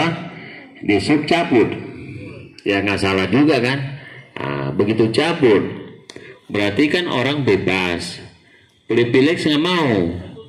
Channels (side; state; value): both; identical; correlation 1.00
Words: Dishub cabut. Ya nggak salah juga kan? Nah, begitu cabut, berarti kan orang bebas. Pilih-pilih nggak mau,